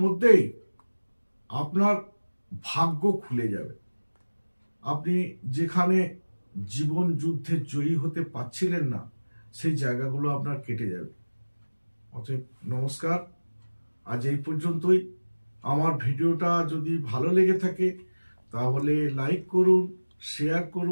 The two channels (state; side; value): inverted; both; correlation -1.00